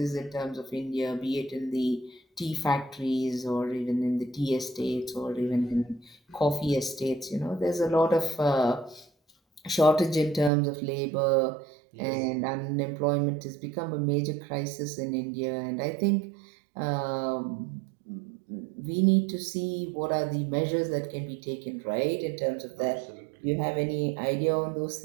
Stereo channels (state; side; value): drops out; left; at 10.5 s